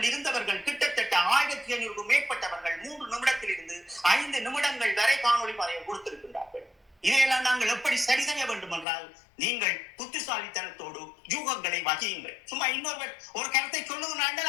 இருந்தவர்கள் கிட்டத்தட்ட 1500 மேற்பட்டவர்கள் 3 நிமிடத்தில் இருந்து 5 நிமிடங்கள் வரை காணொலி பதிவு கொடுத்திருக்கின்றார்கள். இதையெல்லாம் நாங்கள் எப்படி சரி செய்ய வேண்டும் என்றால், நீங்கள் புத்திசாலித்தனத்தோடு யூகங்களை வகியுங்கள். சும்மா இன்னொரு ஒரு கருத்தை சொல்லுங்கள்,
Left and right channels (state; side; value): drops out; right; at 8.8 s